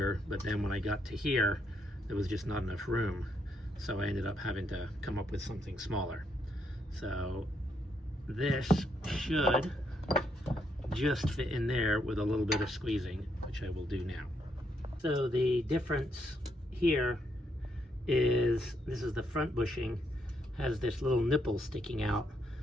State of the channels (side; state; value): both; normal; correlation 0.76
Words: but then when I got to here, there was just not enough room. So I ended up having to come up with something smaller. So this should just fit in there with a little bit of squeezing, which I will do now. So the difference here is, this is the front bushing, has this little nipple sticking out.